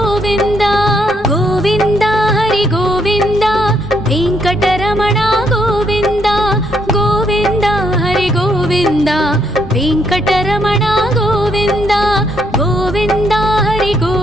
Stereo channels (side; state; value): right; noise; rumble, 17 dB below the sound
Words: గోవింద హరి గోవింద వెంకటరమణ గోవింద గోవింద హరి గోవింద వెంకటరమణ గోవింద గోవింద హరి